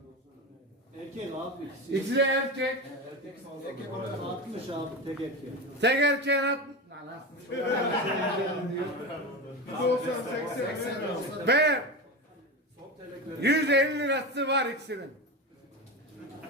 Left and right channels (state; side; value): normal; both; correlation 0.22